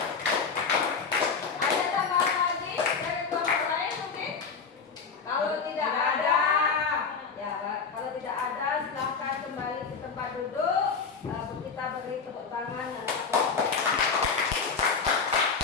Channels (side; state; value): right; quieter; 5.4 dB